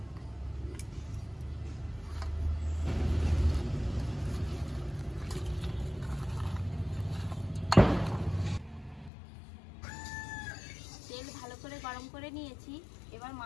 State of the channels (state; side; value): drops out; right; at 9.1 s